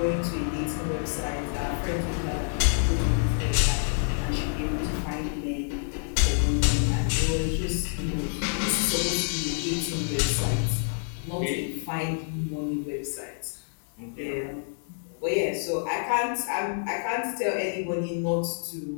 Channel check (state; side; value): silent; right; 60 dB below the other